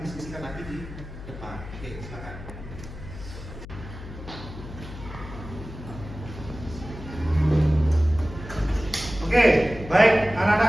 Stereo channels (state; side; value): noise; left; hum, 12 dB below the sound